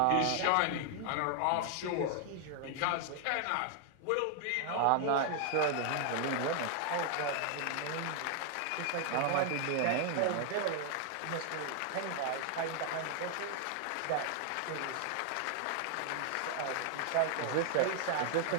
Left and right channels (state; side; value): different; both; correlation 0.00